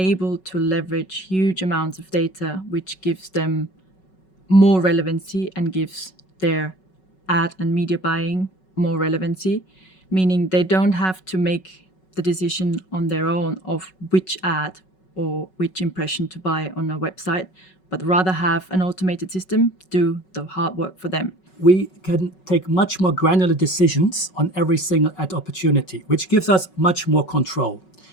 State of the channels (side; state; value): right; late; 5.4 ms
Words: to leverage huge amounts of data, which gives them more relevancy and gives their ad and media buying more relevancy, meaning they don't have to make the decision on their own of which ad or which impression to buy on a website, but rather have an automated system do the hard work for them. We can take much more granular decisions on every single ad opportunity, which gives us much more control.